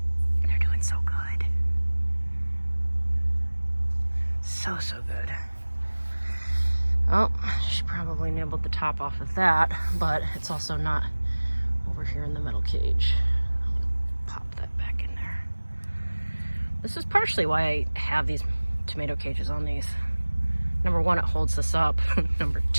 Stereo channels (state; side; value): inverted; both; correlation -1.00